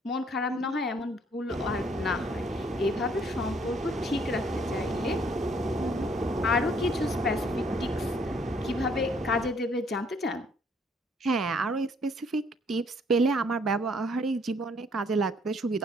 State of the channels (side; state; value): both; normal; correlation 0.64